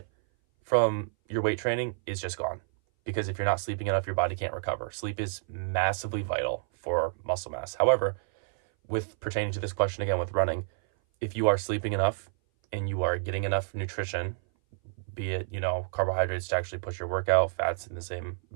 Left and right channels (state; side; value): silent; left; 57 dB below the other